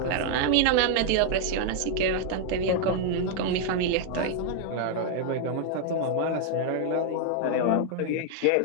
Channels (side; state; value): both; different; correlation 0.00